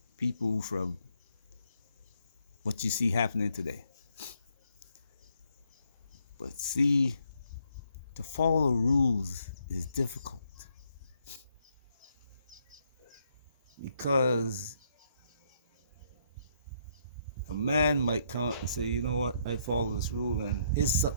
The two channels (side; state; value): both; inverted; correlation -0.72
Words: people from what you see happening today. But see, to follow rules is difficult because A man might come up and say, you know what, I follow this rule, and his